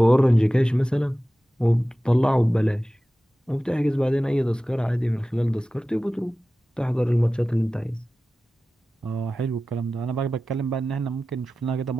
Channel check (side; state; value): both; normal; correlation 0.95